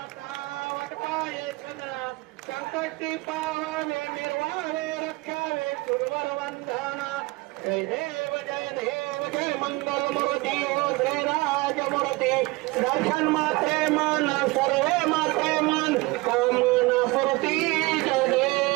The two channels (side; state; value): left; quieter; 22.9 dB